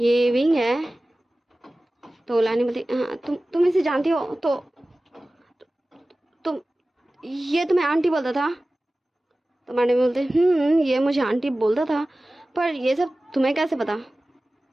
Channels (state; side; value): normal; both; correlation 0.97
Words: विंग है। तो लैनी बोलती हाँ तुम इसे जानती हो? तो तुम ये तुम्हें आंटी बोलता था? तो मैडम बोलते ये मुझे आंटी बोलता था, पर ये सब तुम्हें कैसे पता?